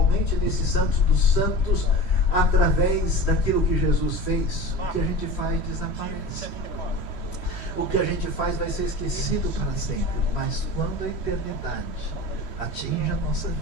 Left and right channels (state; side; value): late; right; 3.1 ms